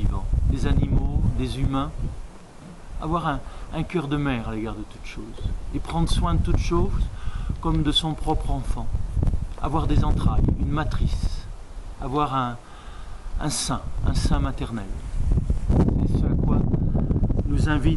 des animaux, des humains. Avoir un cœur de mère à l'égard de toutes choses et prendre soin de toutes choses comme de son propre enfant. Avoir des entrailles, une matrice, avoir un sein maternel. C'est ce à quoi nous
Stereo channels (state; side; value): identical; both; correlation 1.00